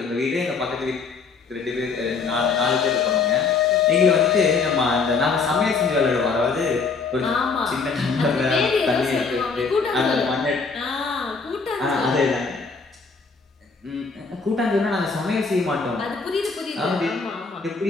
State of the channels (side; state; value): right; quieter; 4.8 dB